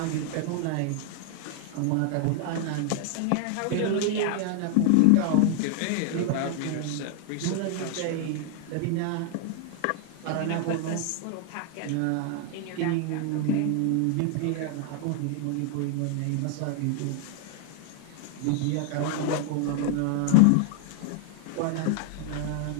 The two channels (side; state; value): both; different; correlation 0.00